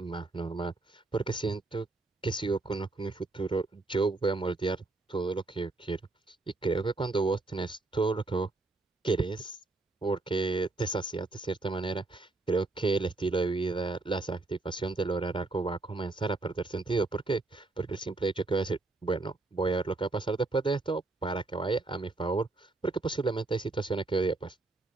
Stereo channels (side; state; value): left; quieter; 3.3 dB